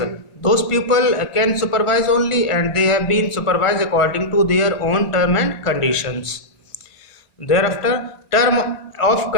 Those people can supervise only, and they have been supervised according to their own term and conditions. Thereafter, term of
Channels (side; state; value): right; late; 1.5 ms